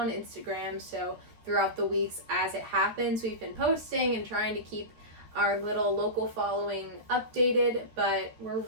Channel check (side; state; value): left; late; 13 ms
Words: Instagram, so throughout the weeks as it happens, we've been posting and trying to keep our little local following updated, but we're